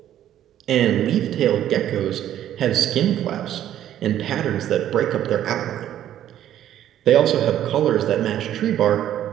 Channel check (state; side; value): quieter; left; 11.5 dB